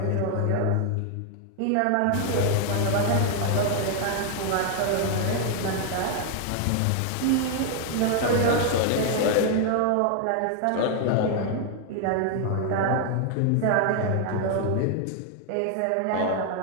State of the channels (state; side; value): different; both; correlation 0.00